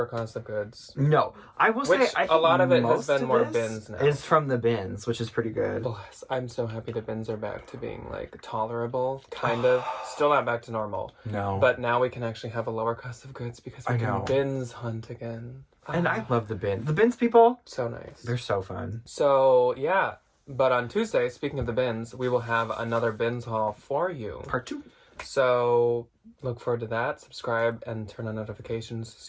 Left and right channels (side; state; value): both; identical; correlation 1.00